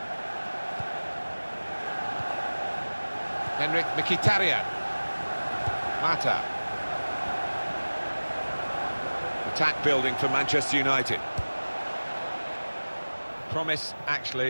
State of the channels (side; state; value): both; inverted; correlation -1.00